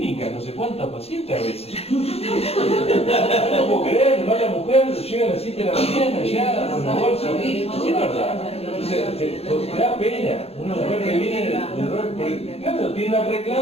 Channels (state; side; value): late; right; 0.29 ms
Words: No sé cuántas pacientes a veces. No puedo creer, va la mujer, llega a las 7 de la mañana ya con la bolsa. Es verdad. Entonces, te da pena. Una mujer que viene claro, tiene una